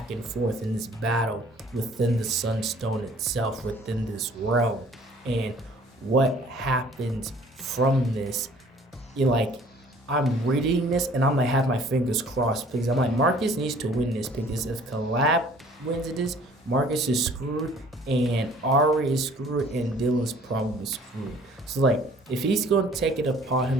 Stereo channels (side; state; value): both; normal; correlation 0.54